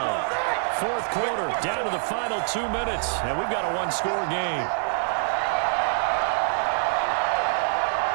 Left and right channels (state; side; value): silent; left; 62 dB below the other